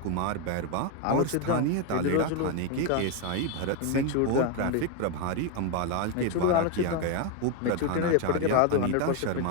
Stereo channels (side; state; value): both; different; correlation 0.01